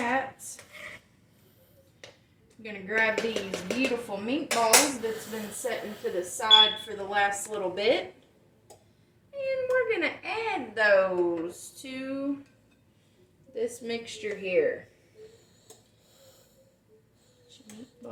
I'm going to grab these beautiful meatballs that's been setting to the side for the last little bit. And we're going to add those to this mixture here. Put your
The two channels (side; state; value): both; identical; correlation 1.00